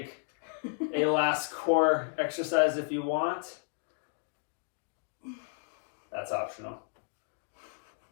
a last core exercise if you want. That's optional.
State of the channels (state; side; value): silent; right; 56 dB below the other